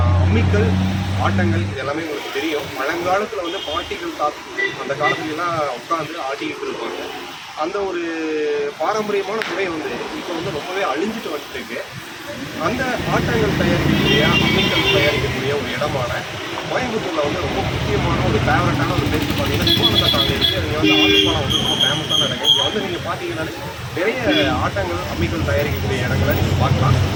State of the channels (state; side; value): identical; both; correlation 1.00